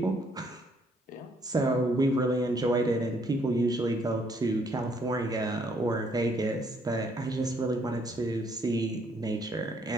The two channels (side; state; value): both; normal; correlation 0.68